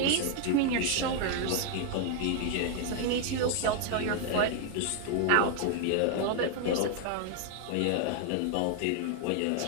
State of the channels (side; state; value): both; different; correlation 0.00